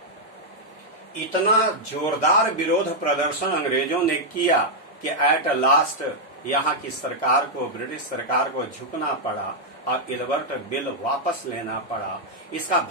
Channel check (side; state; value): both; normal; correlation -0.04